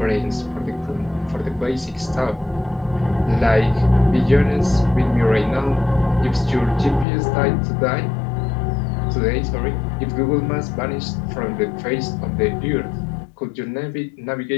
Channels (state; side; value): drops out; right; at 7.1 s